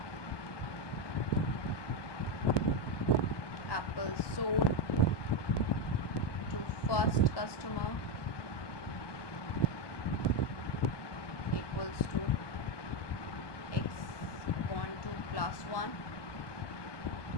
apples sold to first customer equals to X upon 2 plus 1.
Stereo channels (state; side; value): late; right; 1.2 ms